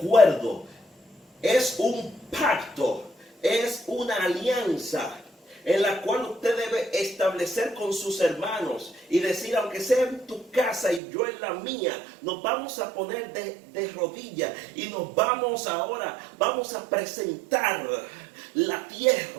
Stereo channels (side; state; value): left; drops out; at 11.0 s